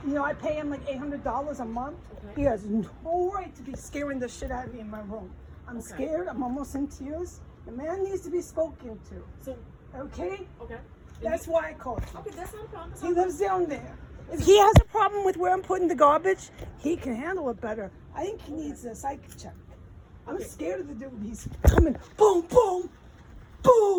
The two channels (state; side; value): identical; both; correlation 1.00